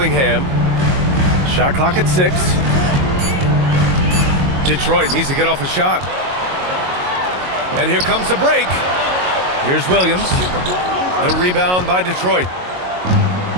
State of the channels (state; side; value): late; left; 22 ms